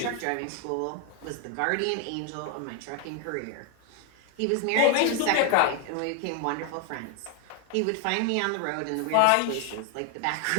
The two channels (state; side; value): different; both; correlation 0.01